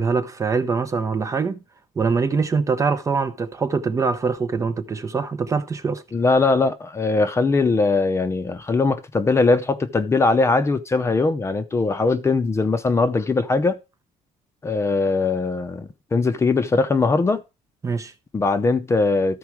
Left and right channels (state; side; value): normal; both; correlation 0.74